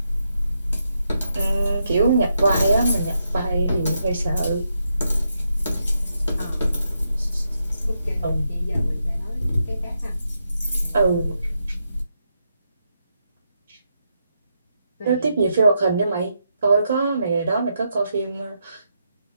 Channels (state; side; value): inverted; both; correlation -0.82